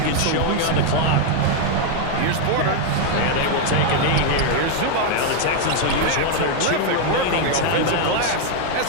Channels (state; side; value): different; both; correlation 0.01